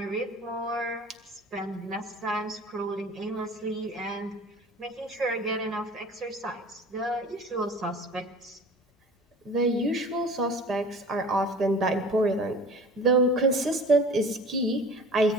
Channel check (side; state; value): both; normal; correlation 0.42